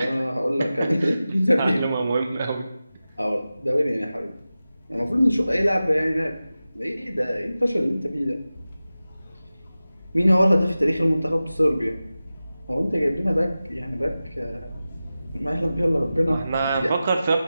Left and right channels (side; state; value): both; inverted; correlation -0.95